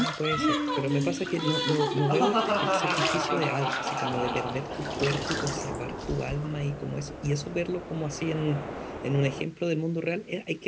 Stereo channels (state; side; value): identical; both; correlation 1.00